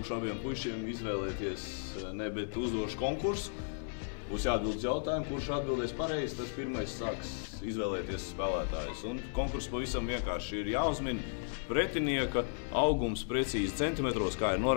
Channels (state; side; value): silent; right; digital silence